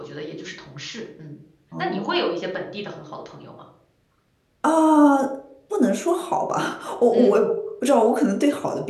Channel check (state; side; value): identical; both; correlation 1.00